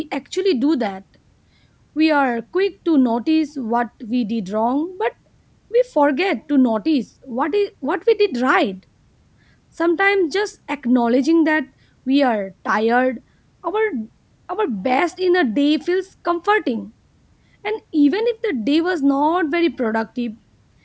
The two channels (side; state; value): both; identical; correlation 1.00